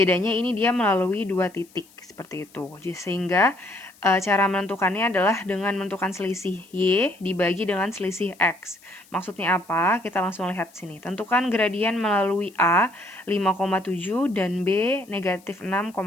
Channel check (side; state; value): left; noise; hiss, 27 dB below the sound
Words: ini dia melalui dua titik seperti itu. Sehingga cara menentukannya adalah dengan menentukan selisih Y dibagi dengan selisih X. Maksudnya apa? Kita langsung lihat sini. Tentukan gradien melalui A 5,7 dan B negatif 6,10.